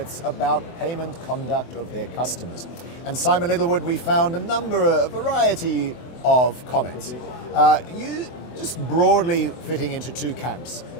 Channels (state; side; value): late; right; 24 ms